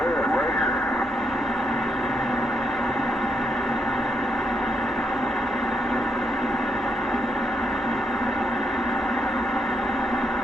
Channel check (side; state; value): both; normal; correlation 0.78